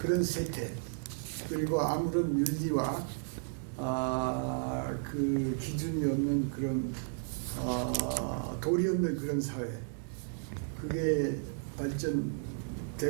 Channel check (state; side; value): silent; left; 55 dB below the other